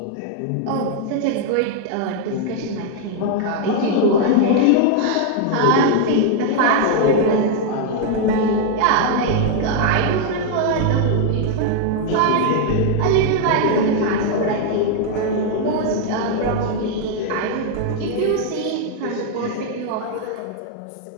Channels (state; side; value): different; both; correlation 0.00